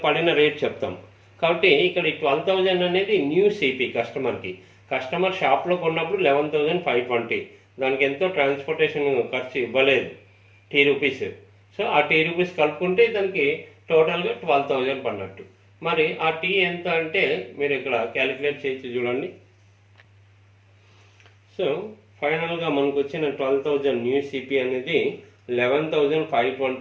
పడిన రేట్ చెప్తాం. కాబట్టి ఇక్కడ 12,000 అనేది న్యూ సిపి కస్టమర్కి. కస్టమర్ షాప్లో కొన్నప్పుడు 11,520, దానికి ఎంతో ట్రాన్స్పోర్టేషన్ ఖర్చు ఇవ్వలేదు, Rs. సో ఆ Rs కలుపుకుంటే దానికి టోటల్గా 12,000 పడినట్టు. మరి ఆ టీ ఎంత అంటే మీరు ఇక్కడ క్యాలిక్యులేట్ చేసి చూడండి. సో ఫైనల్గా మనకు వచ్చిన 12,000 న్యూ సిపి అనేది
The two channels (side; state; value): both; identical; correlation 1.00